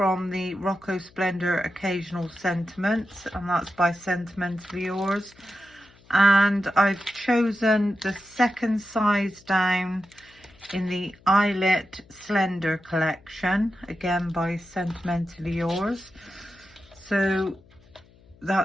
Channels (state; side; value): noise; left; hum, 28 dB below the sound